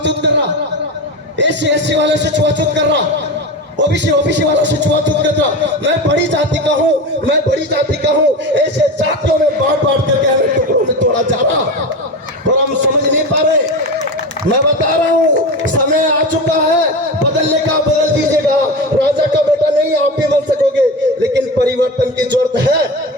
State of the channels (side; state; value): both; normal; correlation 0.24